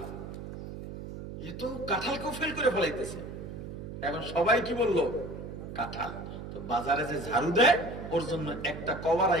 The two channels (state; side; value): noise; right; hum, 9 dB below the sound